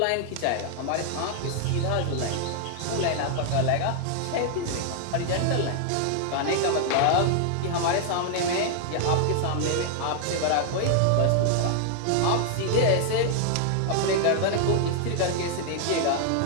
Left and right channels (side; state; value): both; different; correlation 0.00